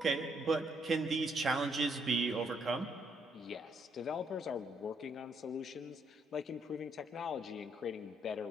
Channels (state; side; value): normal; both; correlation 0.72